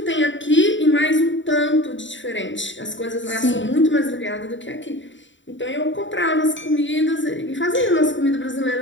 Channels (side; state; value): right; late; 0.54 ms